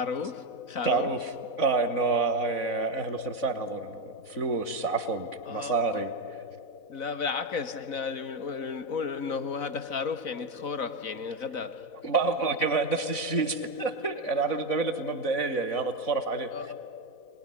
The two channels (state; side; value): late; right; 4.0 ms